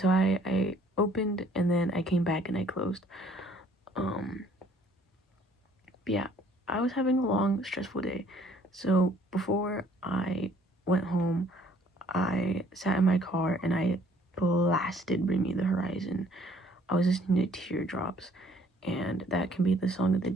I opened and then I came back and I closed. Um, but yeah, I was having a long, stressful day. So before I went home, I sat in my car and I blasted Bring Me the Horizon. I was listening to Teardrops, and that can be the song of the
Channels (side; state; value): both; normal; correlation 0.60